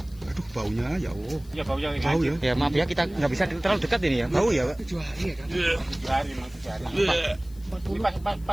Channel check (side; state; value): left; noise; hiss, 26 dB below the sound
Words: Aduh baunya ya Allah. Ya baunya Bau ya? Ya maaf ya kita nggak bisa terlalu dekat ini ya. Bau ya Pak? 7 hari ya kan? 7 hari, 7 hari. Ini